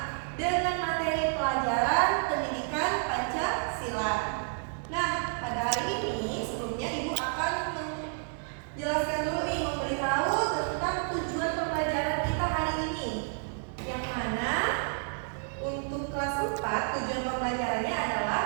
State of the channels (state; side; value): silent; left; 58 dB below the other